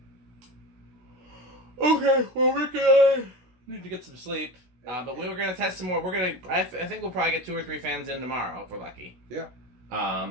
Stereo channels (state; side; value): late; left; 16 ms